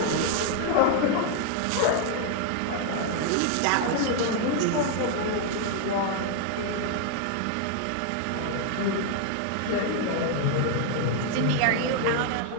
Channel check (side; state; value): both; different; correlation 0.00